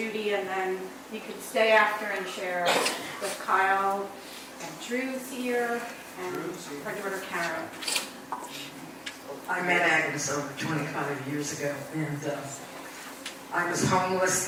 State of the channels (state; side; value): identical; both; correlation 1.00